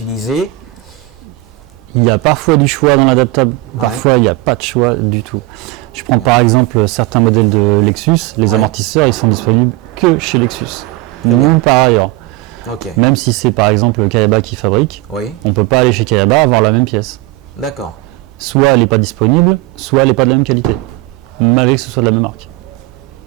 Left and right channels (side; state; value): left; quieter; 18.9 dB